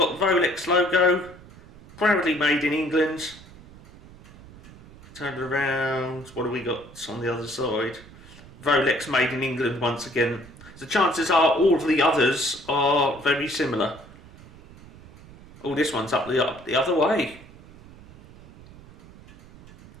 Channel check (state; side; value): noise; right; rumble, 21 dB below the sound